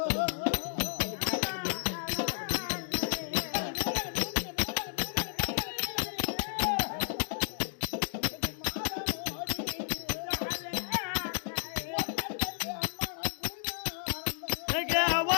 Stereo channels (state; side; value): silent; right; digital silence